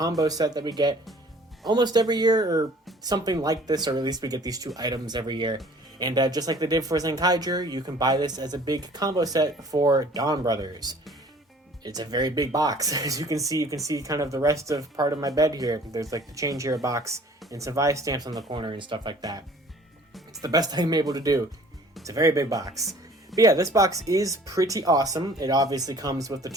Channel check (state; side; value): normal; both; correlation 0.52